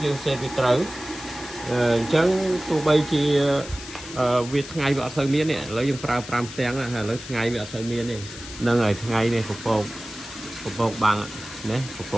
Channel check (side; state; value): left; noise; hiss, 13 dB below the sound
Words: យើងសេតវាត្រូវអញ្ចឹងទោះបីជាវាថ្ងៃវាអត់សូវមានទេឥឡូវយើងប្រើ5ផ្ទាំងណាឥឡូវថ្ងៃវាអត់សូវមានទេហ្នឹងហើយថ្ងៃនេះពពកបាំងណាពព